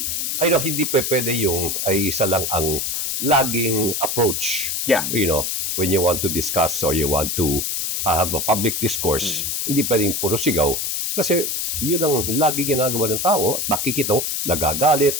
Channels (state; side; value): noise; left; hiss, 1 dB below the sound